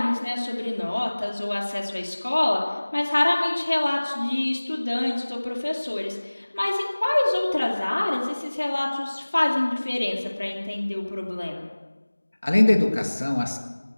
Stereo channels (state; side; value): inverted; both; correlation -1.00